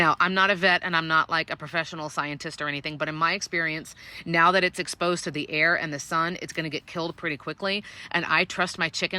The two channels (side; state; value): both; identical; correlation 1.00